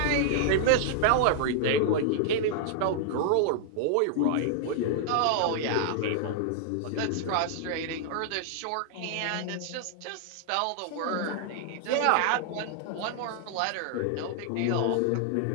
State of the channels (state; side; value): different; both; correlation -0.01